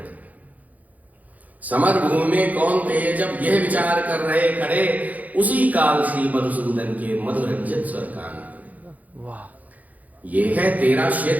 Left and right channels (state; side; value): late; left; 0.078 ms